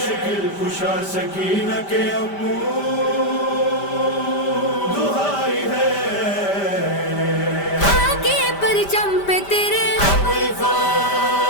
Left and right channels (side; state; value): right; late; 5.1 ms